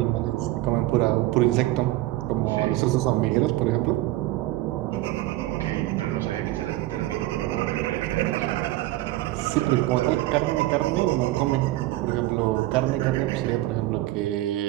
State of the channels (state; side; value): quieter; left; 17.0 dB